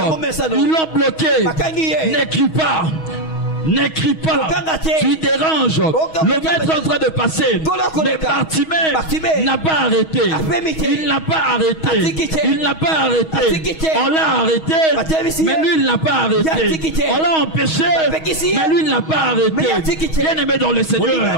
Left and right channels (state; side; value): late; right; 6.3 ms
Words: l'ont bloqué. N'écris pas. N'écris pas, tu déranges. Le maître est en train de passer. Mais Bartimée n'a pas arrêté. Il n'a pas arrêté. Il n'a pas arrêté. On l'a arrêté, mais lui il n'a pas arrêté. On l'a empêché, mais lui il n'a pas arrêté. Bien aimé dans le